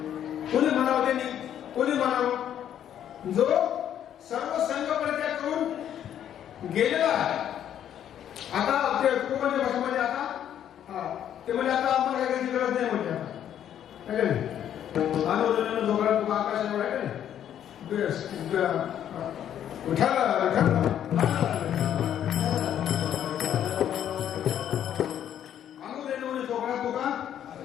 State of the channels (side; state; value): right; quieter; 10.2 dB